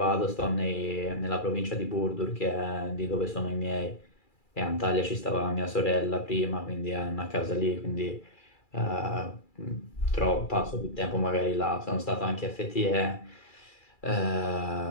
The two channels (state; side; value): late; right; 2.3 ms